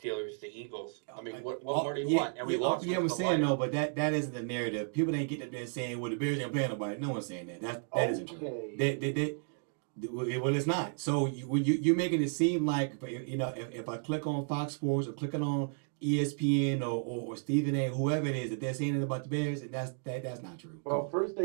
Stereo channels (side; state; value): left; silent; 56 dB below the other